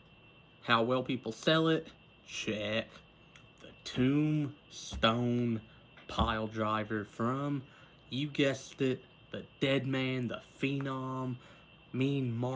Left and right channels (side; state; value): both; identical; correlation 1.00